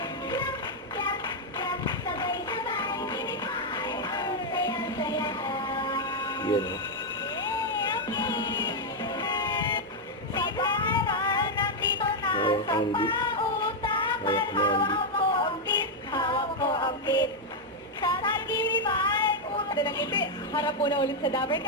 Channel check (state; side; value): normal; both; correlation 0.00